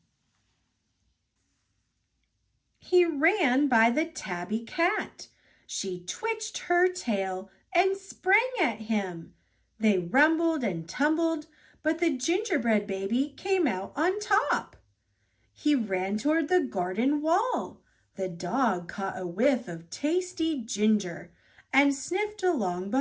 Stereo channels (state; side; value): identical; both; correlation 1.00